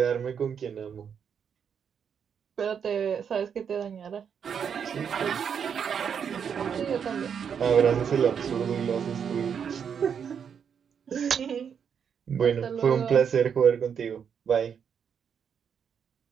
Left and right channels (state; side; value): quieter; left; 7.4 dB